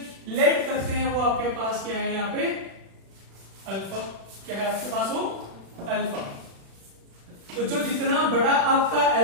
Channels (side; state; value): left; late; 36 ms